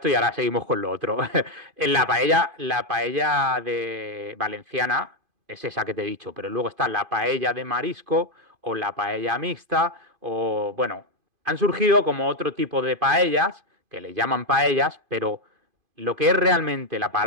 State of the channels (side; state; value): left; late; 2.5 ms